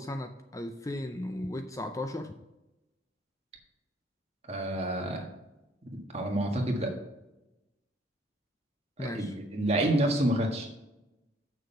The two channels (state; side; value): normal; both; correlation 0.63